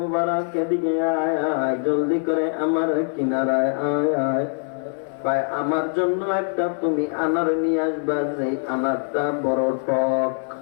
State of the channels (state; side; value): silent; right; 60 dB below the other